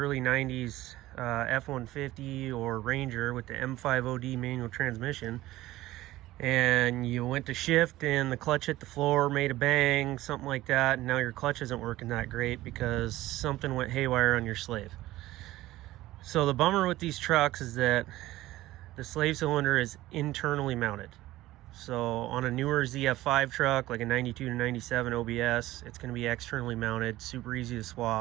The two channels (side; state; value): left; quieter; 16.5 dB